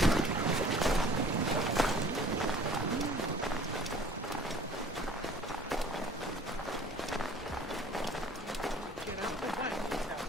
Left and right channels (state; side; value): normal; both; correlation 0.51